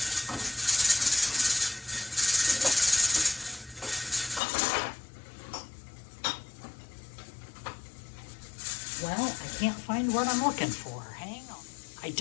Well, I can't find what I'm looking for. Hang on. I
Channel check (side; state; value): right; drops out; at 4.4 s